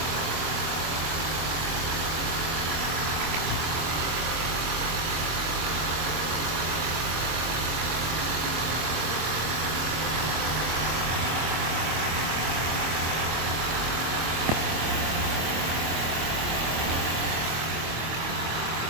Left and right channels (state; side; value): late; left; 25 ms